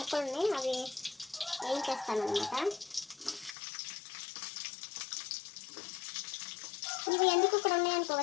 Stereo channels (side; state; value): right; drops out; at 3.6 s